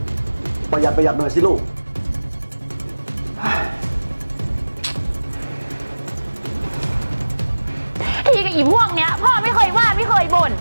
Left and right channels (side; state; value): both; inverted; correlation -1.00